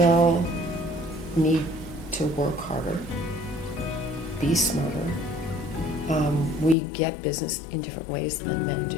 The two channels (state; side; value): drops out; right; at 6.8 s